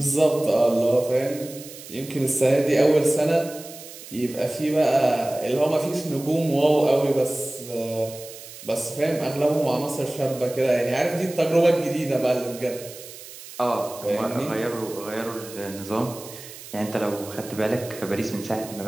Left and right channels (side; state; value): right; noise; hiss, 15 dB below the sound